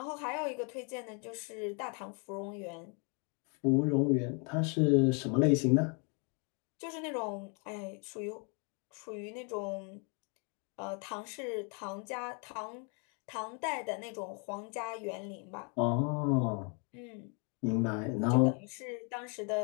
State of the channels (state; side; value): quieter; right; 36.7 dB